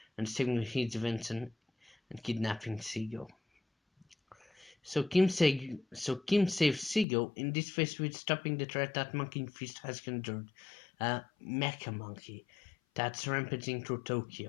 and stealing his invention and kidnapping Seagull. So Kim saves Seagull, in this phase with stopping the threat that Monkey Fist has conjured, a mecha monkey that's rampaging through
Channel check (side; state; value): right; drops out; at 7.1 s